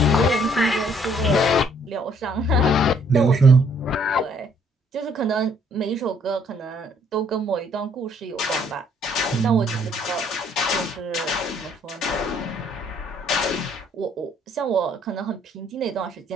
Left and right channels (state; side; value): normal; both; correlation 0.64